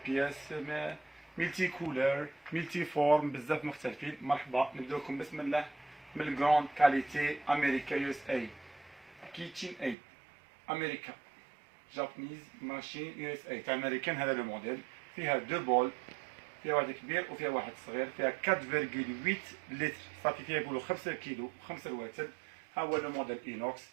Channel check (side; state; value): left; drops out; at 10.0 s